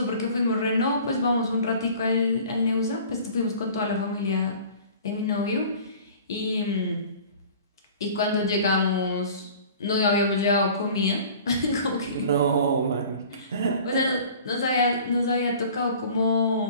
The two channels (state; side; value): inverted; both; correlation -0.45